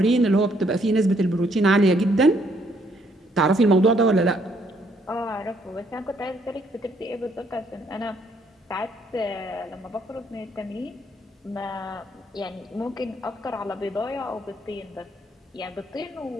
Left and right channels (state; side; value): normal; both; correlation 0.69